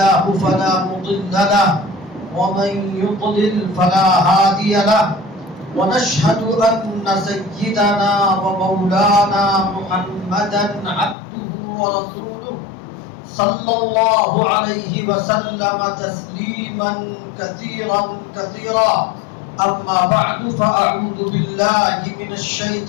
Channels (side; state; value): right; drops out; at 11.2 s